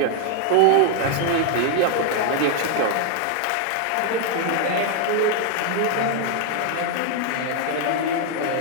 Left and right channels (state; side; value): different; both; correlation 0.00